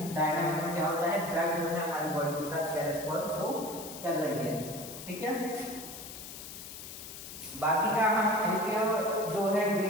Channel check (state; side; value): noise; left; hiss, 11 dB below the sound